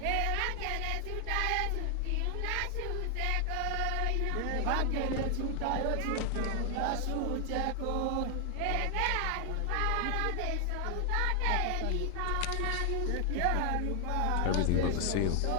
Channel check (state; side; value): different; both; correlation 0.00